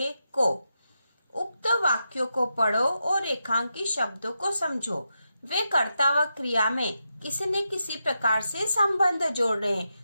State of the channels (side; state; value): both; inverted; correlation -0.87